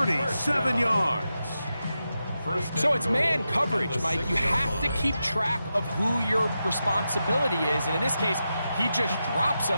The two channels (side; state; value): both; inverted; correlation -0.89